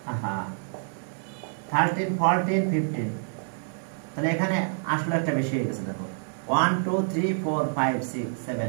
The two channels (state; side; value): silent; left; 59 dB below the other